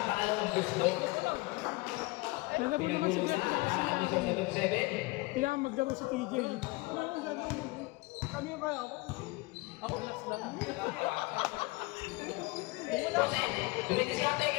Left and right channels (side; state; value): right; quieter; 23.6 dB